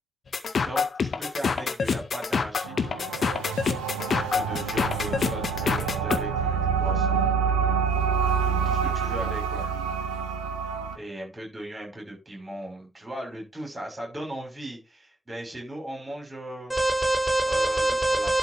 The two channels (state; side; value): normal; both; correlation 0.56